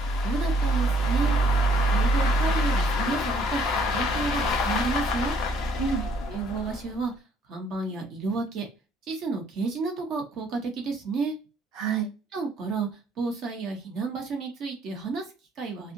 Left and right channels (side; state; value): both; normal; correlation 0.63